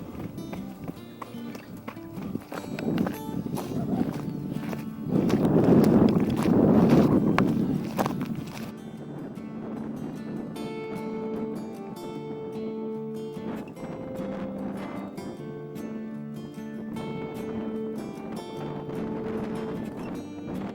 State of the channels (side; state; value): both; identical; correlation 1.00